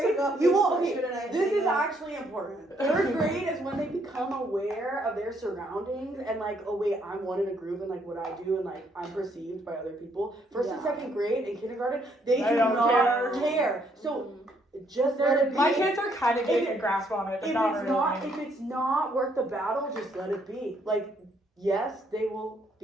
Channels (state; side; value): normal; both; correlation 0.70